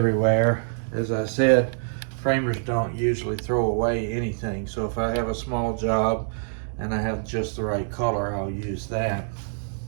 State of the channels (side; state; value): left; silent; digital silence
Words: As I said, framers don't usually throw away anything, so if I have a small job and I have just the right color, I'll use that.